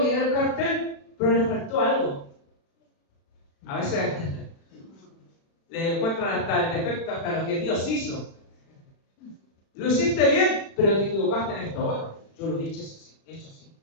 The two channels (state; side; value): late; right; 36 ms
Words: el cartel, pero le faltó algo. A veces le encuentran hasta el defecto, hasta lo que Dios hizo. Lo hiciste bien, pero te equivocaste en esto otro. Yo lo he hecho así.